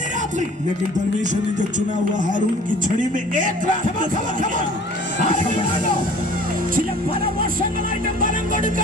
രാത്രി. लेकिन परमेश्वर ने जो चुना हुआ हारून की छड़ी में एक रात में ചില പല വർഷങ്ങളായിട്ട് ഫലം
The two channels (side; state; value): both; normal; correlation 0.49